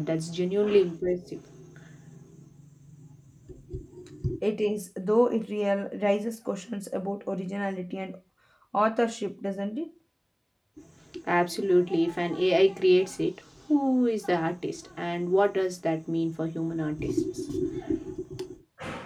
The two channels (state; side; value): identical; both; correlation 1.00